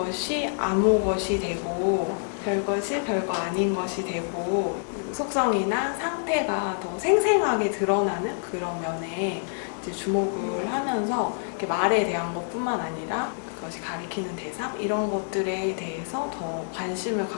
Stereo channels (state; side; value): silent; right; digital silence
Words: 아무 것이 되고 별것이 별거 아닌 것이 되고 속성이나 상태가 더 생생하게 드러나는 그런 면에 이제 주목을 하면서 이렇게 말에 대한 것뿐만 아니라 그것이 가리키는 대상 이런 것들에 대해서 더 관심을